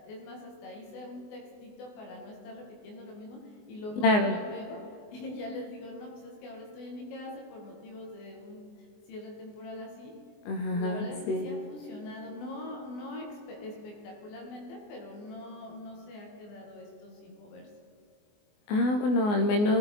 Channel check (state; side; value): late; right; 24 ms